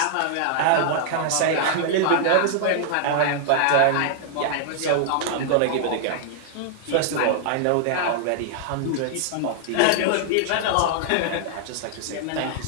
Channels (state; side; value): different; both; correlation -0.01